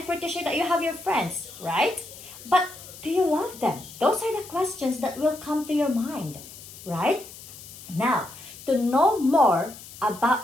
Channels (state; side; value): noise; left; hiss, 16 dB below the sound